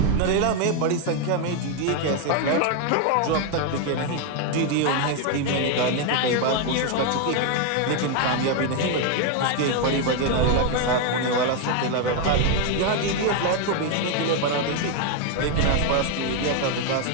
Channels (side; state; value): both; different; correlation 0.01